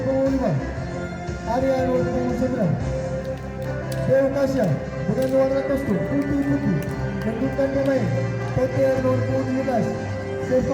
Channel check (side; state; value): both; identical; correlation 1.00